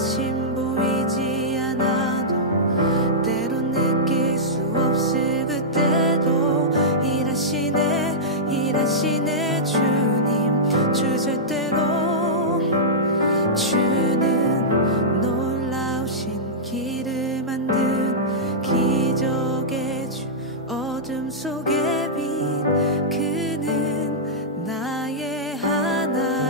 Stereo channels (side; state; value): both; normal; correlation -0.13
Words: 보이지 않아도 때론 느낄 수 없을 그때도 일하시네 주님 주제대로. 주는 놀라우신 길을 만든 기적의 주 어둠 속의 빛 그는 나의